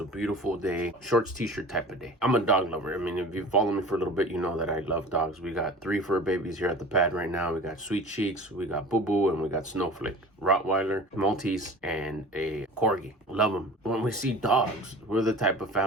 a beautiful day. Shorts, t-shirt type of day. I'm a dog lover. I mean, if you follow me for a little bit, you know that I love dogs. We got 3 fur babies here at the pad right now. We got Sweet Cheeks, we got Boo Boo, and we got Snowflake. Rottweiler, Maltese, and a Corgi. Love them. When we see dogs, we're the type of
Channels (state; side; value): normal; both; correlation 0.39